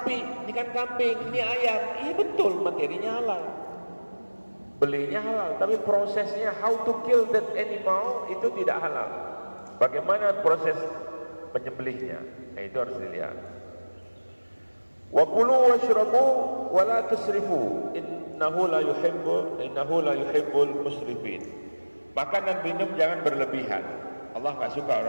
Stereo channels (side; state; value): both; inverted; correlation -1.00